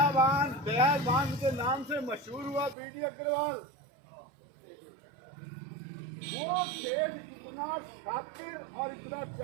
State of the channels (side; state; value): left; drops out; at 2.8 s